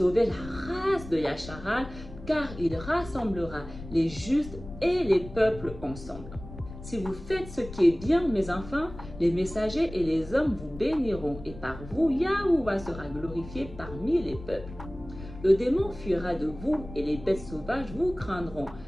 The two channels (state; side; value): noise; left; rumble, 14 dB below the sound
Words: la race de Yasharal, car il rassemblera les justes et les peuples ensemble. Si vous faites ce qui est bien, mes enfants, les messagers et les hommes vous béniront, et par vous, Yahuwah sera glorifié parmi les peuples. Le démon fuira de vous, et les bêtes sauvages vous craindront,